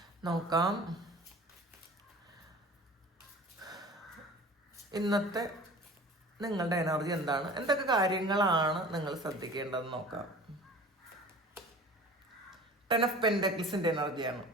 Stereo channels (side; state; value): both; normal; correlation 0.42